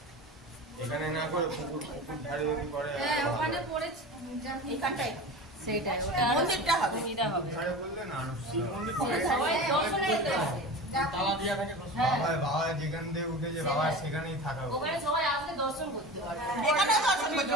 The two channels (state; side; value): normal; both; correlation 0.32